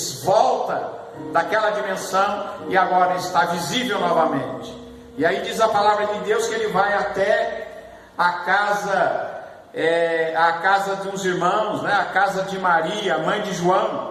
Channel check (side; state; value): both; identical; correlation 1.00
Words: volta daquela dimensão e agora está visível novamente. E aí diz a palavra de Deus que ele vai até a casa de uns irmãos, né? A casa de Maria, mãe de